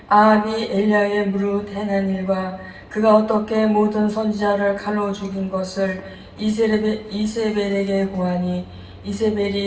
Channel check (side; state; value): both; identical; correlation 1.00